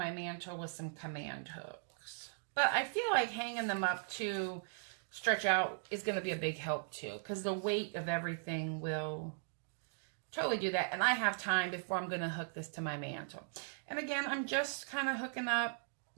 mantle with some command hooks. But I feel like hanging them up to stretch out is going to be a big help too, because the weight of everything will totally do that. And I have time before I'm going to hook this to my mantle. And again, I'm just kind of hooking up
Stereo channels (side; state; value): left; silent; digital silence